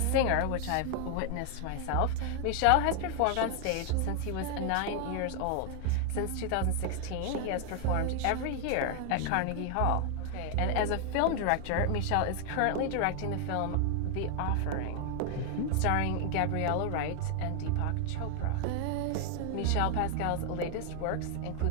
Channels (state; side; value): different; both; correlation 0.00